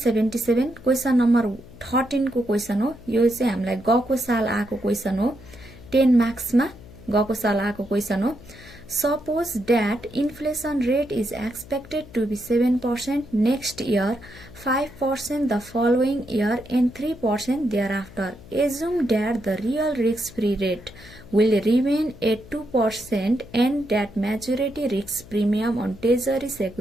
क्वेशन नम्बर 13 को क्वेशन हो। यो चाहिँ हामीलाई गएको साल आएको क्वेशन हो। 10 मार्क्समा गएको साल आएको क्वेशन हो। Suppose that inflation rate is expected to be 7% next year, 5% the following year, and 3% thereafter. Assume that the real risk-free rate will remain at 2% and that maturity risk premium on treasury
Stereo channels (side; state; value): left; noise; hum, 19 dB below the sound